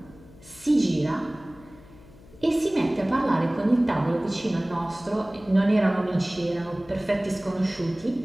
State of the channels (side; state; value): left; noise; hum, 23 dB below the sound